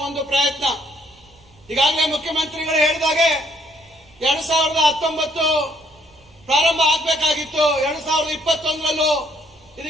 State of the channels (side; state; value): right; noise; rumble, 29 dB below the sound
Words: ಒಂದು ಪ್ರಯತ್ನ. ಈಗಾಗಲೇ ಮುಖ್ಯಮಂತ್ರಿಗಳು ಹೇಳಿದಾಗೆ 2019 ಪ್ರಾರಂಭ ಆಗಬೇಕಾಗಿತ್ತು. 2021ರಲ್ಲೂ